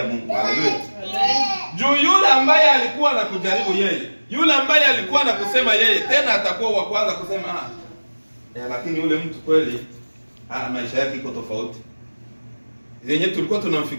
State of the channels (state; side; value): inverted; both; correlation -1.00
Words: Mungu. Haleluya. Juu yule ambaye alikuwa anakujaribu yeye, yule ambaye alikuwa anakusema yeye, tena atakuwa wa kwanza kusema lakini yule mtu kweli maisha yake iko tofauti. Yenye tulikuwa